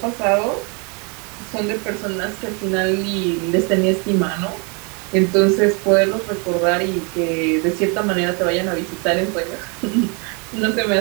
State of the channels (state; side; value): quieter; left; 33.8 dB